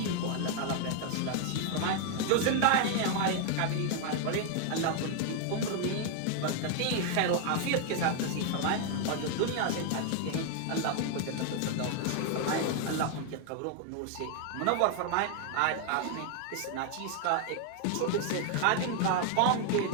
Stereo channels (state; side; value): different; both; correlation 0.00